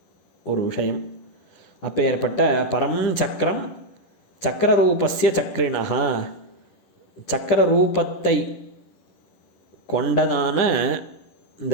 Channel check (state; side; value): late; right; 10 ms